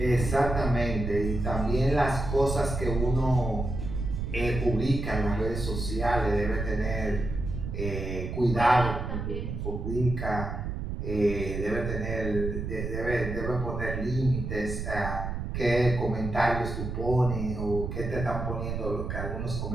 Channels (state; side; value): noise; right; rumble, 4 dB below the sound